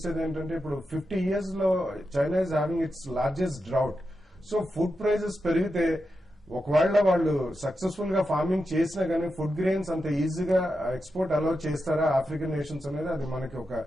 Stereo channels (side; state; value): both; normal; correlation 0.88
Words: ఏంటంటే ఇప్పుడు 50 years లో China is having its largest drought. So food prices పెరిగితే ఒకవేళ వాళ్ళు సక్సెస్ఫుల్ గా ఫార్మింగ్ చేసినా కానీ ఫుడ్ గ్రెయిన్స్ అంత ఈజీగా ఎక్స్పోర్ట్ అలౌ చేస్తారా ఆఫ్రికన్ నేషన్స్ అనేది అది మనకి ఒక